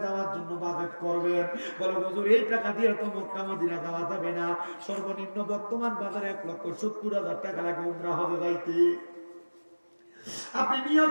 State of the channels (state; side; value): inverted; both; correlation -1.00